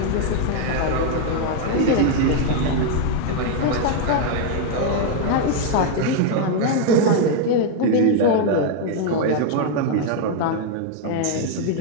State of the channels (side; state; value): both; different; correlation 0.00